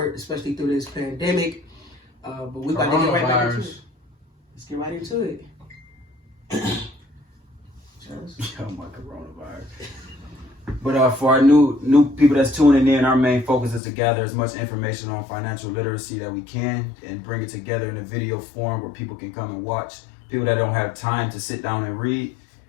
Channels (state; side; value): drops out; right; at 13.8 s